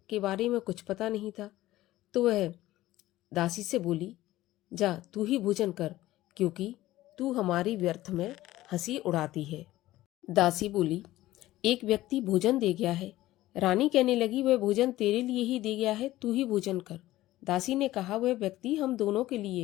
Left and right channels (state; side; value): quieter; right; 16.0 dB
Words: के बारे में कुछ पता नहीं था, तो वह दासी से बोली, जा तू ही भोजन कर, क्योंकि तू हमारी व्यर्थ में हंसी उड़ाती है। दासी बोली, एक व्यक्ति भोजन दे गया है। रानी कहने लगी, वह भोजन तेरे लिए ही दे गया है, तू ही भोजन कर। दासी ने कहा, वह व्यक्ति हम दोनों के